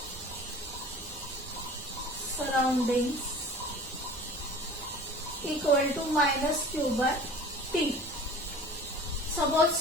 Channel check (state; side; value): normal; both; correlation 0.42